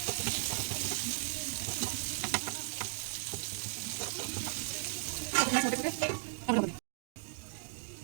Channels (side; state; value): left; silent; 54 dB below the other